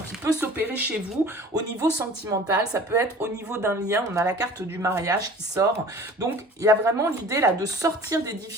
qui peut s'opérer chez vous au niveau sentimental, ça peut être au niveau d'un lien, on a la carte du mariage qui sort, donc il y a vraiment l'idée là de sortir des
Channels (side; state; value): both; normal; correlation 0.44